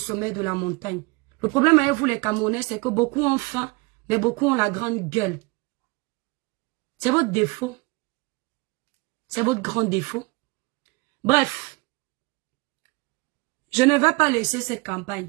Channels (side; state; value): left; quieter; 25.2 dB